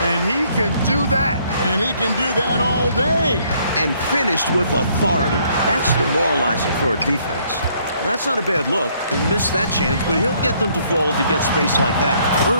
And he can do that. And he can do that all day. And finished with authority. That's demoralizing for a defense. That's not a bad look. He missed that chance, but he'll get them to fall if he gets space like that.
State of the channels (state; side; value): inverted; both; correlation -0.66